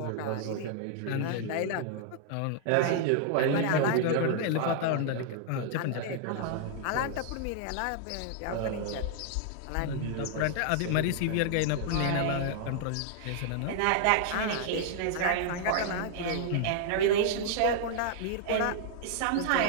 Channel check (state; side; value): different; both; correlation 0.00